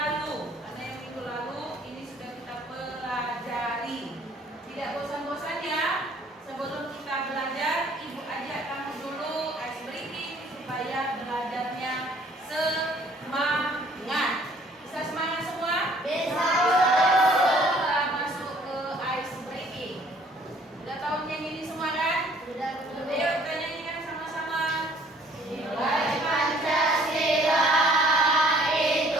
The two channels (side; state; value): both; normal; correlation 0.58